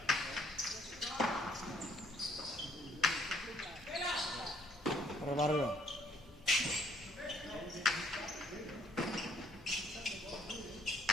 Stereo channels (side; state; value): both; normal; correlation 0.65